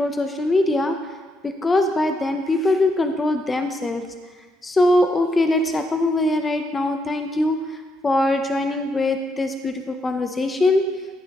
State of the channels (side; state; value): both; normal; correlation 0.79